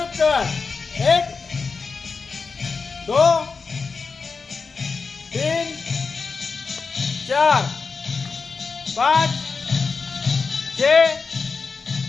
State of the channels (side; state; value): right; quieter; 4.8 dB